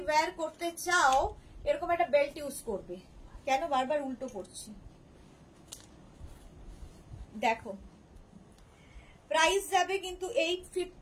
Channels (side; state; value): both; identical; correlation 1.00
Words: ওয়্যার করতে চাও এরকম একটা বেল্ট ইউজ করবে কেন বারবার উল্টো করছি দেখো প্রাইস যাবে কিন্তু